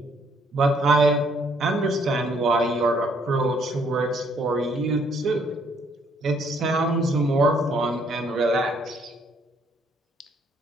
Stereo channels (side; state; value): both; normal; correlation 0.67